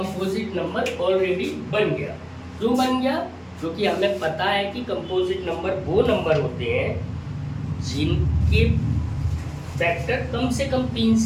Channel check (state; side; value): identical; both; correlation 1.00